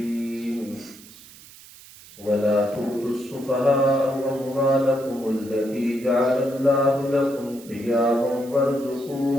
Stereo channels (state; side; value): noise; right; hiss, 20 dB below the sound